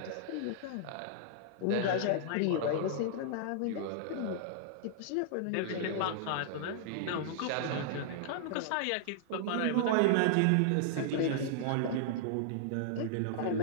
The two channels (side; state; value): both; different; correlation -0.01